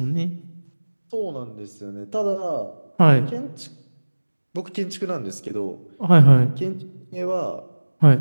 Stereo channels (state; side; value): inverted; both; correlation -1.00